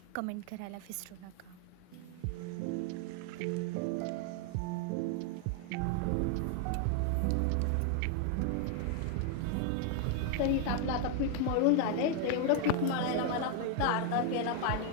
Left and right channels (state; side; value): different; both; correlation 0.00